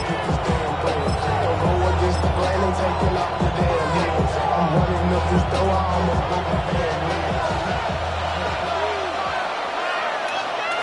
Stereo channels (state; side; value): identical; both; correlation 1.00